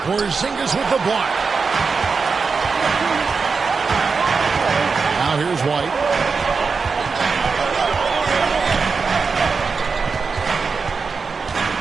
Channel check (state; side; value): quieter; left; 4.9 dB